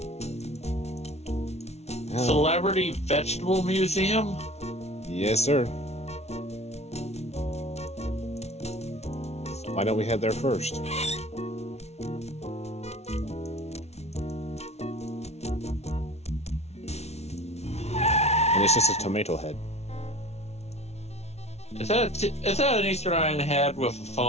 Oh. Celebrity Vegetable Museum? Yes, sir. Why don't we head there first? And it's just a tomato head. Is that an Eastern Island head with a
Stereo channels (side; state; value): right; late; 0.31 ms